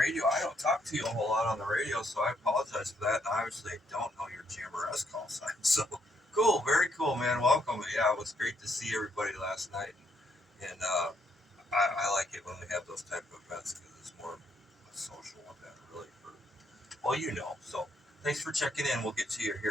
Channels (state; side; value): normal; both; correlation 0.73